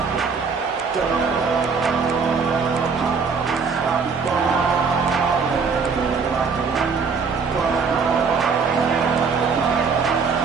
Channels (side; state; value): left; quieter; 5.3 dB